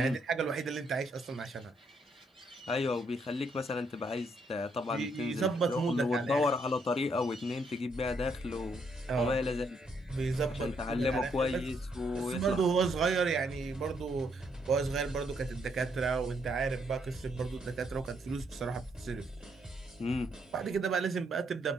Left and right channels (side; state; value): both; normal; correlation 0.73